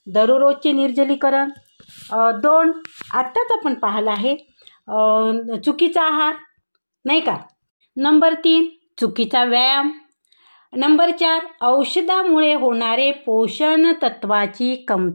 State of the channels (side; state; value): both; inverted; correlation -1.00